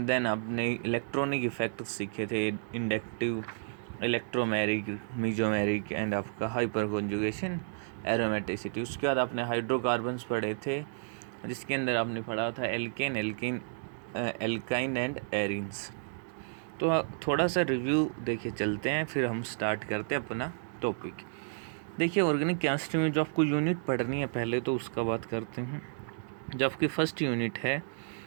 देन आपने इलेक्ट्रॉनिक इफेक्ट सीखे थे, इंडक्टिव, इलेक्ट्रोमेरिक, मीजोमेरिक एंड आपका हाइपर कॉन्जुगेशन, एरोमेटिसिटी। उसके बाद आपने हाइड्रोकार्बन्स पढ़े थे, जिसके अंदर आपने पढ़ा था एल्काइन एंड एरिन्स। तो थोड़ा सा रिव्यू देखे चलते हैं, फिर हम स्टार्ट करते हैं अपना टॉपिक। देखिए, ऑर्गेनिक केमिस्ट्री में जो आपको यूनिट पढ़नी है पहले तो उसका बात करते हैं। जो आपकी फर्स्ट यूनिट है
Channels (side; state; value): left; silent; digital silence